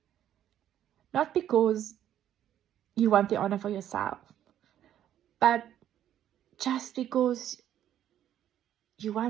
Not because you want the honor for yourself, but just because you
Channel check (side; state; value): left; quieter; 11.1 dB